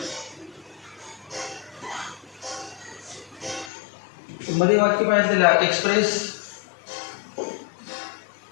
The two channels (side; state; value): right; drops out; at 3.7 s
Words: मध्ये वाक्य पाहिजे express